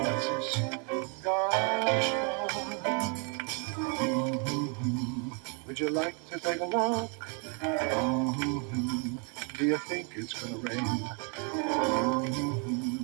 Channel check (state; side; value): quieter; left; 36.6 dB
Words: gosh darn. Would you like to take a walk? Do you think it's gonna rain?